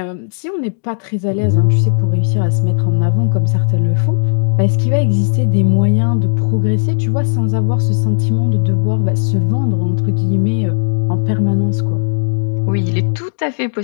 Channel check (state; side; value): silent; right; digital silence